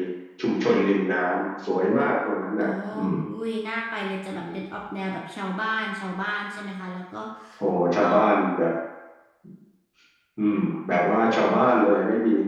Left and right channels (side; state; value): both; identical; correlation 1.00